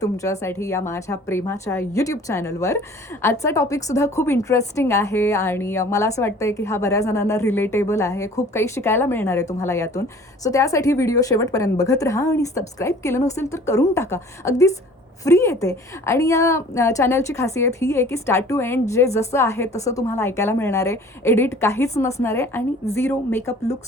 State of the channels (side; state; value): both; normal; correlation 0.49